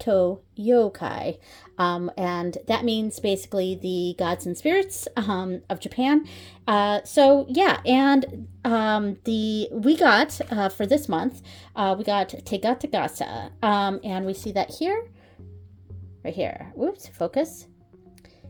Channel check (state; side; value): identical; both; correlation 1.00